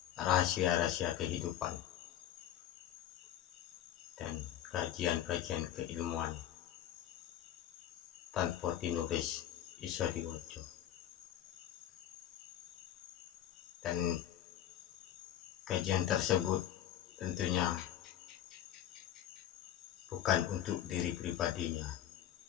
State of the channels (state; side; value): quieter; right; 11.3 dB